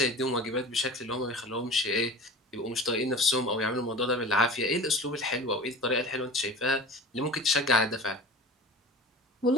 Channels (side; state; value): both; normal; correlation 0.36